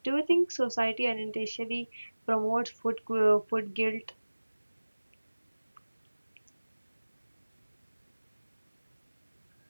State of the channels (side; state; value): both; inverted; correlation -1.00